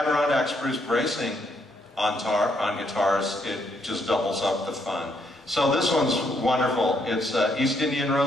spruce bracing on guitars, it just doubles up the fun. So this one's wonderful. It's East Indian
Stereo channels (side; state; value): both; normal; correlation 0.74